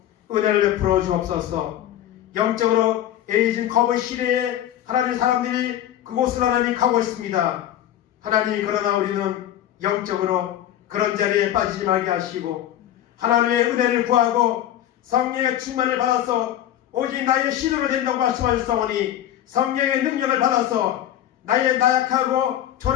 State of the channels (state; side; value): quieter; right; 11.9 dB